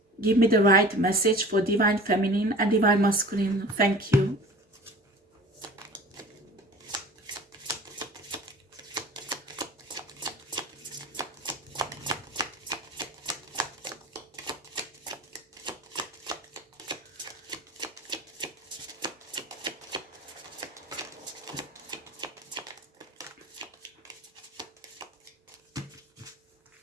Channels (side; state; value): both; normal; correlation 0.41